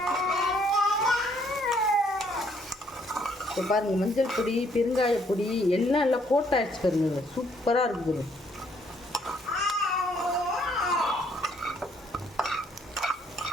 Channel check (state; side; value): normal; both; correlation 0.67